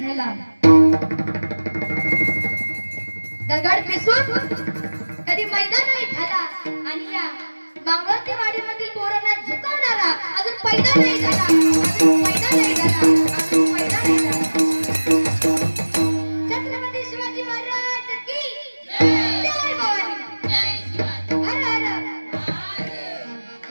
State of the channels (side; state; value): both; inverted; correlation -1.00